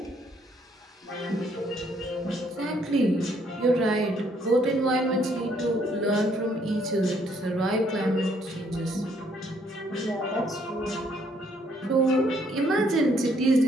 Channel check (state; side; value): normal; both; correlation 0.67